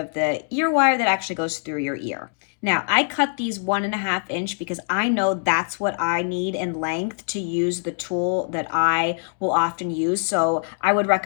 the ear wire that actually goes through your ear. Now, I cut these 1.5 inch because I know that's what I need in length to use the tool that I will often use. So I would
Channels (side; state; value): right; silent; digital silence